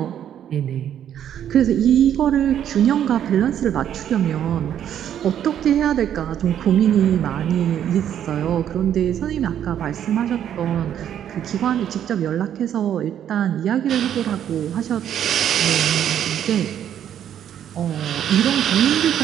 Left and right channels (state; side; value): quieter; left; 10.0 dB